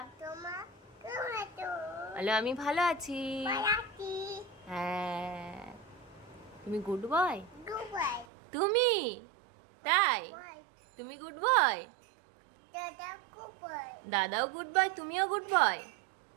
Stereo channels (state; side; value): drops out; left; at 8.2 s